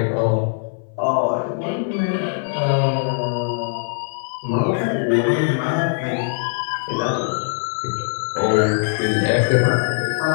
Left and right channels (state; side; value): silent; right; 59 dB below the other